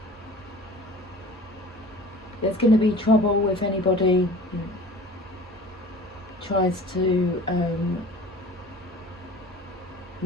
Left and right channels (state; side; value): normal; both; correlation 0.42